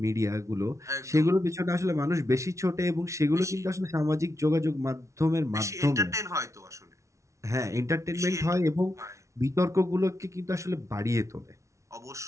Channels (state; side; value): late; left; 0.14 ms